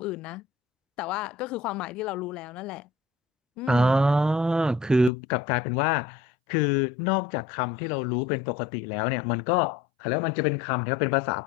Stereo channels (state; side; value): drops out; right; at 5.1 s